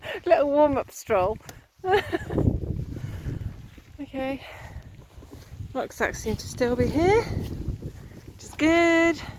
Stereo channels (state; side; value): identical; both; correlation 1.00